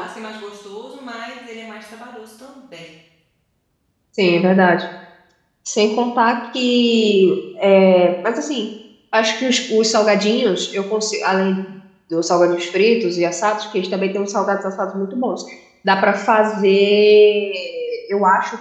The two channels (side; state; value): both; identical; correlation 1.00